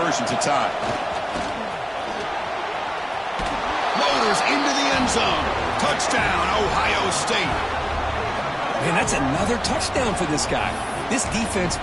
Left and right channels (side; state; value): both; identical; correlation 1.00